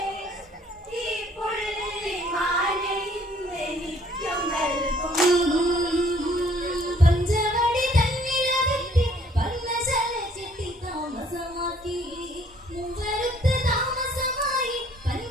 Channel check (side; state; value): both; normal; correlation 0.61